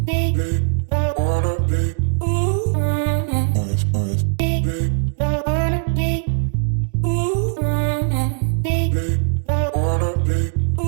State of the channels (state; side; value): silent; left; digital silence